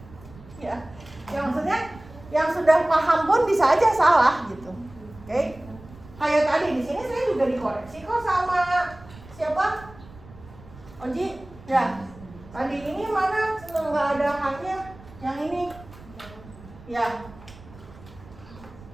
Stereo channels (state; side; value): noise; right; rumble, 20 dB below the sound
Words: ya. Ya maksudnya yang sudah paham pun bisa aja salah gitu, oke? Kayak tadi di sini saya juga dikoreksi kok sama siapa? Oji, ya. Tadi ini mana nggak ada haknya, yang ini, ya.